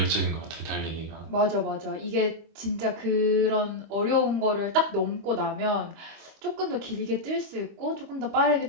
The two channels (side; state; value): left; late; 25 ms